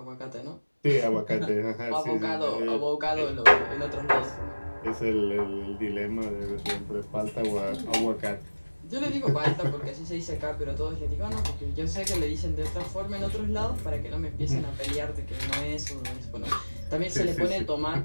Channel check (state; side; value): inverted; both; correlation -1.00